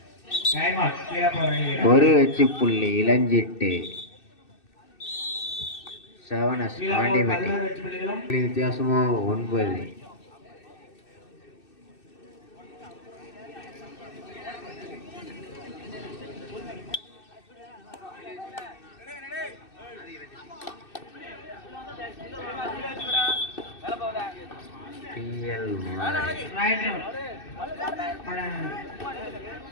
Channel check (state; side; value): late; right; 2.6 ms